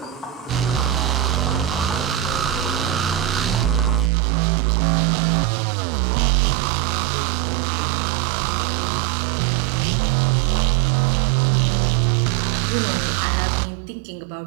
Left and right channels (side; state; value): left; drops out; at 4.1 s